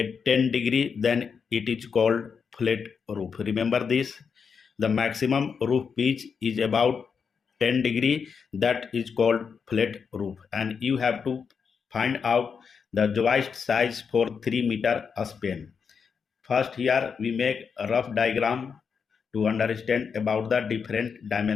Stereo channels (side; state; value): right; quieter; 6.1 dB